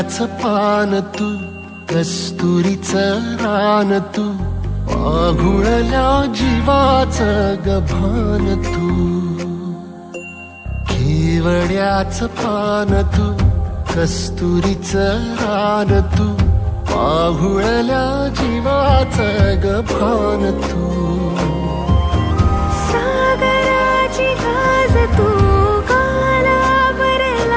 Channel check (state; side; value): identical; both; correlation 1.00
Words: केवड्याचं पान तू, कस्तुरीचं रान तू, पाघुळल्या जीवाचं गभान तू. केवड्याचं पान तू, कस्तुरीचं रान तू, पाघुळल्या जीवाचं गभान तू. सागराची गाज तू,